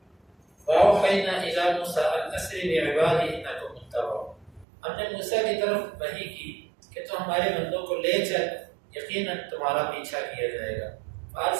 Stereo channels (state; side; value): drops out; left; at 4.7 s